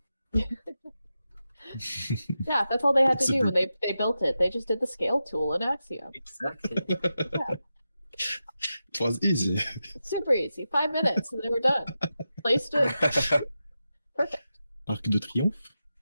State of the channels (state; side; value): inverted; both; correlation -0.90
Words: Yeah, that's all they had to It's a do when they built it. They just did the scale tool in Axiom. Exactly. It was easy. Super easy. 5 minutes and they were done. Placed it. Perfect. Arc de Triomphe.